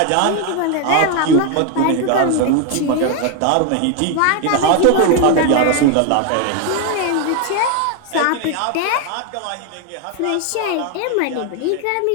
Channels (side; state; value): both; different; correlation 0.01